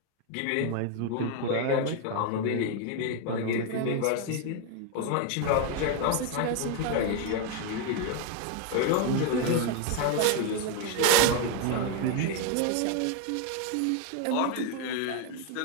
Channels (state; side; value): different; both; correlation 0.01